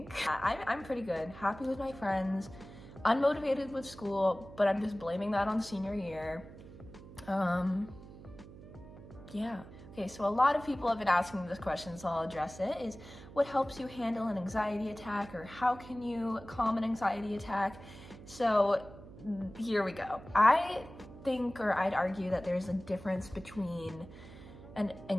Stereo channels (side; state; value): right; noise; hum, 16 dB below the sound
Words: I'm pretty good, happy with my friends, unmotivated with school, but I'm just blaming that on senior year. Yeah. Okay, so a lot of people have been asking me this question, so I'll address it, is what helps you handle an anxiety attack, or how can you calm an anxiety attack? So here we go. I think, or I'd argue, that there's a difference between an